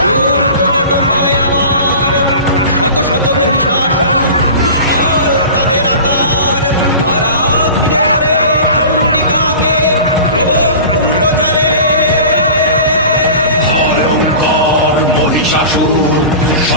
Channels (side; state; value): both; inverted; correlation -0.37